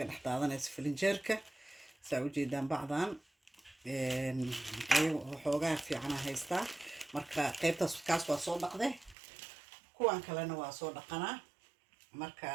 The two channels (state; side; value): drops out; left; at 9.2 s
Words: dhaxdaadanaysa filinjeerka soo jeedaan bacdan ayagu xoogaa fiican haystaa marka qaybtaas kaas waa soo dhaqday kuwan kalena waa soo dhaqanaa marka